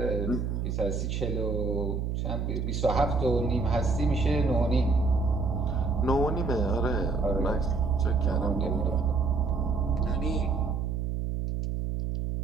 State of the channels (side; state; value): right; noise; hum, 1 dB below the sound